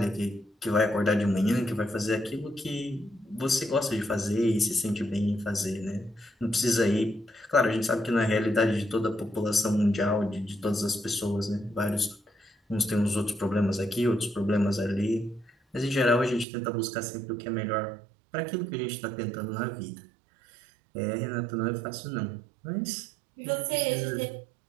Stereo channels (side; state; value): left; drops out; at 16.4 s